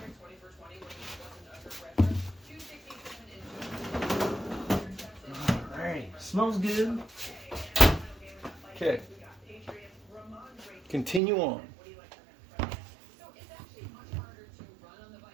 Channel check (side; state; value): left; drops out; at 11.2 s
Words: Alright, smells good. Okay. Continue on.